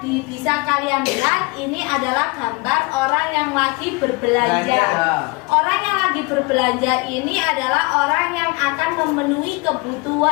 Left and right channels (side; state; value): right; quieter; 27.0 dB